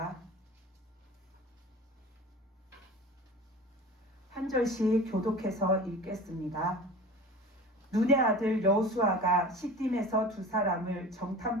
한 절씩 교독해서 읽겠습니다. 눈의 아들 여호수아가 시딤에서 두 사람을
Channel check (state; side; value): normal; both; correlation 0.38